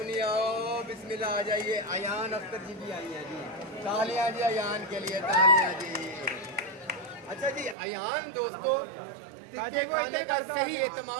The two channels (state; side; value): drops out; left; at 7.8 s